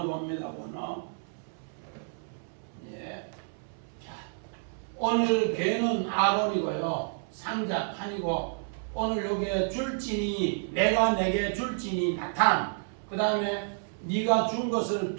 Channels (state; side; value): silent; left; 58 dB below the other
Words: 봅니다. 원어. 예. 자, 오늘 개는 아론이고요. 상자 판이고 오늘 여기에 줄진이 내가 내게 줄진이 나탄. 그 다음에 네가 준 것을